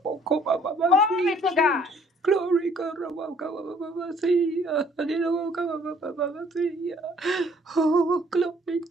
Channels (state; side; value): normal; both; correlation 0.60